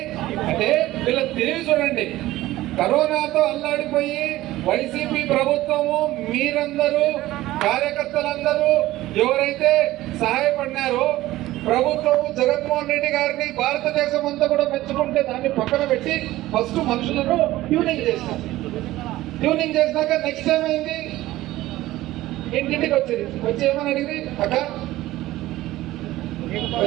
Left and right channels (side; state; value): left; quieter; 16.4 dB